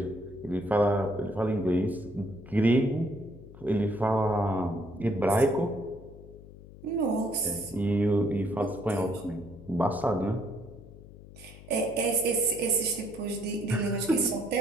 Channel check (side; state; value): left; noise; hum, 18 dB below the sound